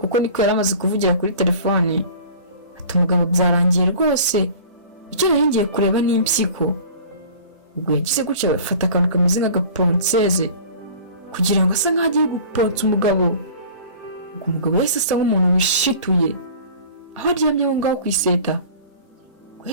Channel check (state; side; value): inverted; both; correlation -0.43